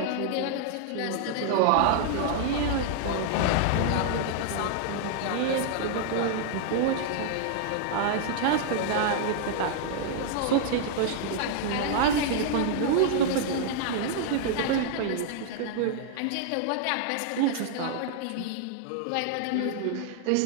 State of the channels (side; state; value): both; different; correlation -0.01